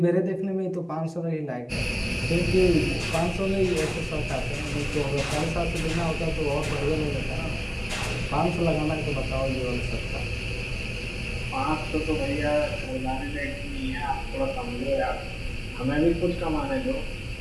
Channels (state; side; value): identical; both; correlation 1.00